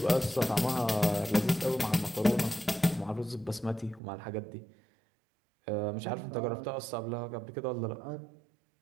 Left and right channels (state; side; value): drops out; left; at 4.0 s